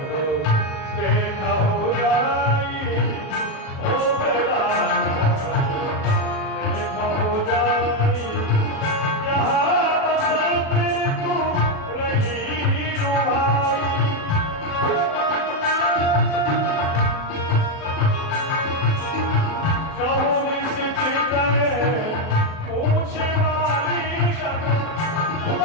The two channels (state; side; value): late; right; 37 ms